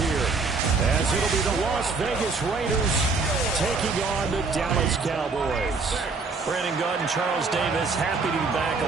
here, as it'll be the Las Vegas Raiders taking on the Dallas Cowboys. Brandon Gaud and Charles Davis, happy to be back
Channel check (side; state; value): left; quieter; 4.3 dB